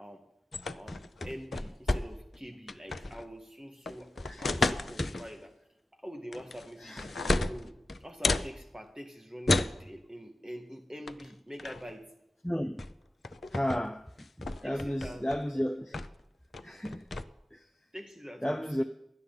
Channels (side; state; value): both; normal; correlation 0.94